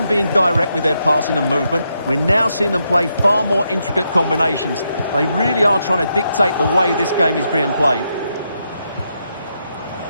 being direct with their passing and movement, we're now seeing them play far more intricate combinations. They really are trying to dictate the way this game is being played.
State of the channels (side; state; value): both; inverted; correlation -0.81